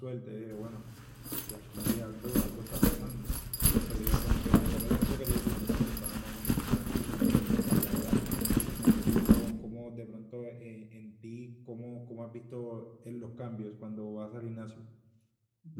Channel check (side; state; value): both; identical; correlation 1.00